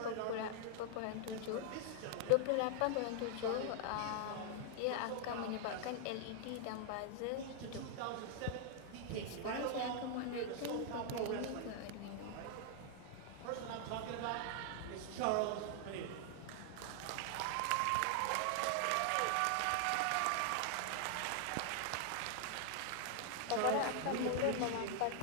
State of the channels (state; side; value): different; both; correlation 0.00